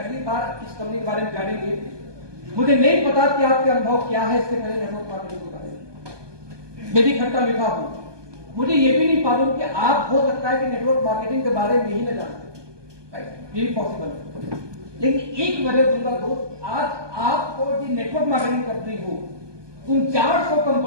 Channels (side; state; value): left; late; 1.2 ms